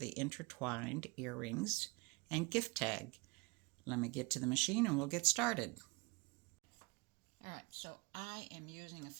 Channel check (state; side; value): quieter; left; 27.5 dB